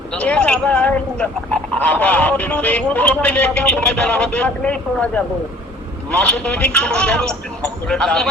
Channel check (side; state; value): both; normal; correlation 0.51